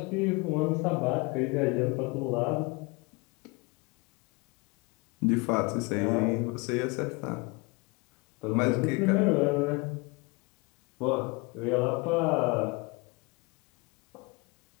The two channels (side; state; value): right; quieter; 27.4 dB